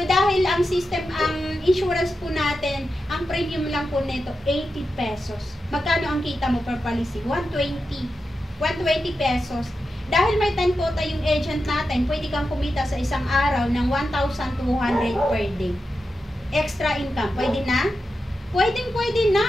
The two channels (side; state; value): both; normal; correlation 0.90